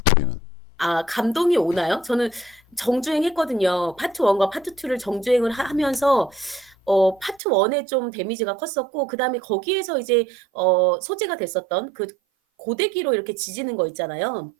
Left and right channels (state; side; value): drops out; left; at 7.4 s